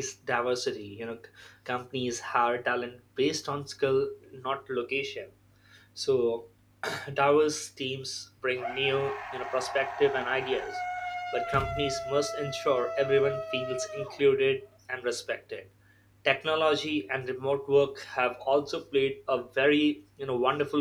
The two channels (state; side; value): identical; both; correlation 1.00